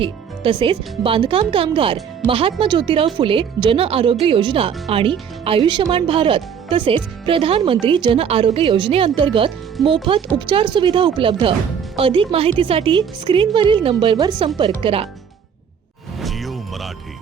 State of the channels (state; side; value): quieter; left; 7.5 dB